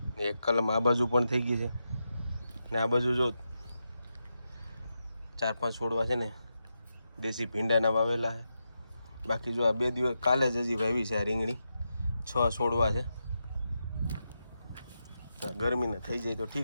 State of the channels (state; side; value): inverted; both; correlation -0.87